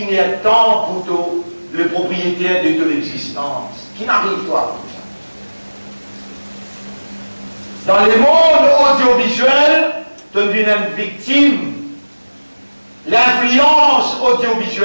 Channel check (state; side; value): inverted; both; correlation -1.00